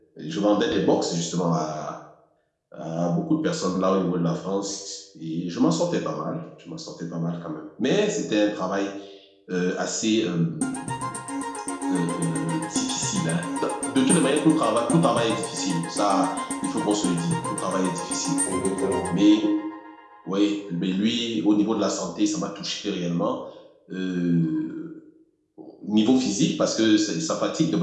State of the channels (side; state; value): both; identical; correlation 1.00